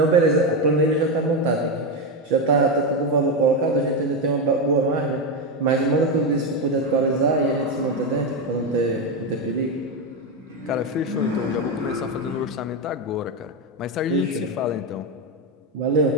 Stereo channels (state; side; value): normal; both; correlation 0.10